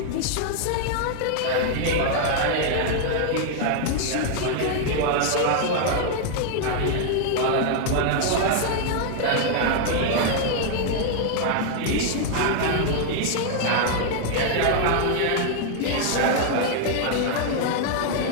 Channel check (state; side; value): different; both; correlation 0.00